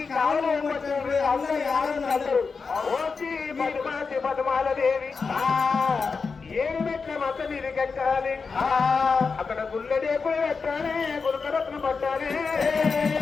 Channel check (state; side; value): quieter; right; 4.9 dB